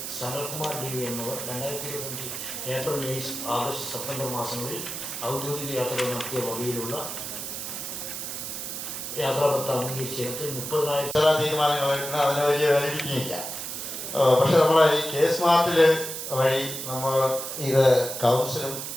സനൽകുമാർ DV എന്നിവർ 2025 ഏപ്രിൽ, മെയ്, ആഗസ്റ്റ്, സെപ്റ്റംബർ മാസങ്ങളിൽ ഔദ്യോഗിക യാത്രകൾ നടത്തിയ വകയിലുള്ള യാത്രാപത്ര അംഗീകരിച്ചിടത്ത് 30,000 തീരുമാനങ്ങളായിട്ടുണ്ട്. അതിന് വലിയ വാലിഡിറ്റി ഇല്ല. പക്ഷെ നമ്മളെ ഈ K-സ്മാർട്ടിൽ വഴി നമ്മൾ ഇത് കൗൺസിലും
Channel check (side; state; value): right; noise; hiss, 6 dB below the sound